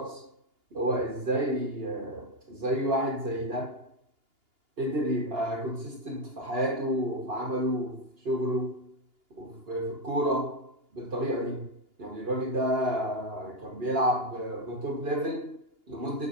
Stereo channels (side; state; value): left; late; 2.8 ms